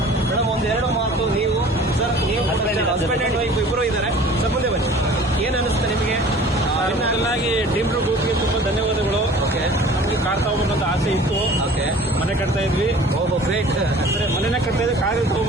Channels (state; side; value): normal; both; correlation 0.46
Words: ಮೇಡಮ್, ಒಂದು 2 ಮಾತು ನೀವು ಸರ್, ನೀವು ಹಸ್ಬೆಂಡ್ ಅಂಡ್ ವೈಫ್ ಇಬ್ಬರು ಇದ್ದಾರೆ. ಸರ್ ಮುಂದೆ ಬನ್ನಿ, ಏನ್ ಅನಿಸುತ್ತೆ ನಿಮಗೆ? ಮೊದಲಾಗಿ ಡ್ರೀಮ್ ಗ್ರೂಪ್ಗೆ ತುಂಬಾ ಧನ್ಯವಾದಗಳು. ಓಕೆ, ನಮ್ಗೆ ಕಾರ್ ತಗೋಬೇಕಂತ ಆಸೆ ಇತ್ತು. ಓಕೆ, ಮನೆ ಕಟ್ತಾ ಇದ್ವಿ. ಓಹೋ ಗ್ರೇಟ್. ಮನೆನೇ ಕಟ್ತಾ ಇದ್ರೆ ಕಾರ್